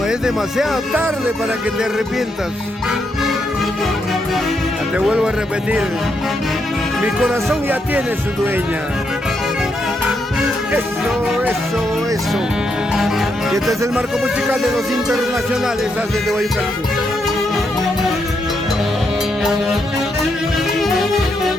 es demasiado tarde para que te arrepientas. Ya te vuelvo a repetir, mi corazón ya tiene su dueña. Eso, eso, eso. Y este es el marco musical de los internacionales desde Guayucalco.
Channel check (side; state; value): both; normal; correlation 0.79